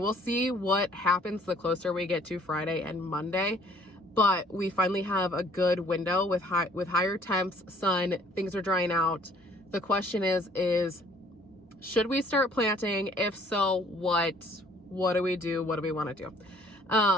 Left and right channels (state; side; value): normal; both; correlation 0.59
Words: see what happens the closer we get to Friday and Monday, but we finally have a good window with higher temps, sun, things are drying out. The question is should we start planting? If so, what do we do? What do we want to do?